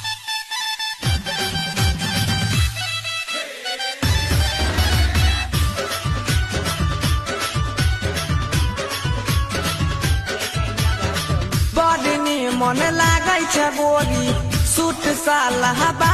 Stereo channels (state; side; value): identical; both; correlation 1.00